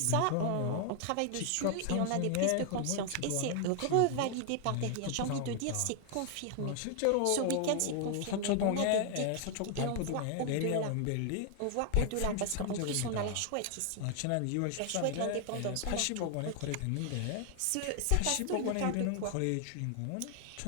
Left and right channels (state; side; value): different; both; correlation 0.00